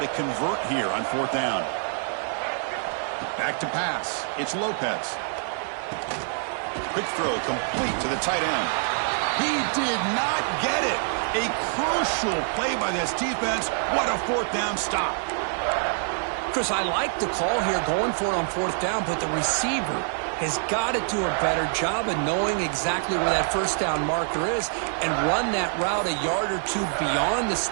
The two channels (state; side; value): silent; left; 61 dB below the other